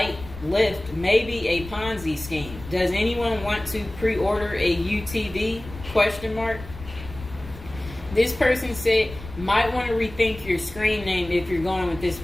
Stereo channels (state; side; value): noise; left; rumble, 14 dB below the sound